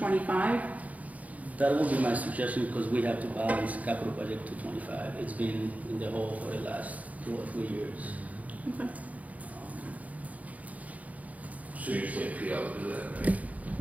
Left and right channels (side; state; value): left; late; 0.072 ms